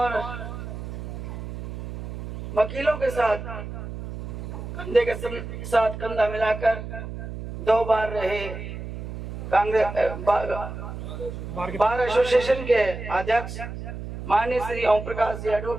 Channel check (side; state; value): right; noise; hum, 8 dB below the sound